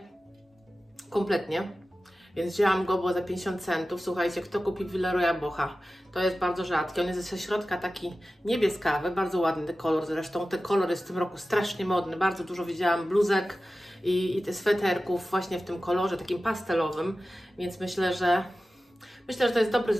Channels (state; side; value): normal; both; correlation 0.95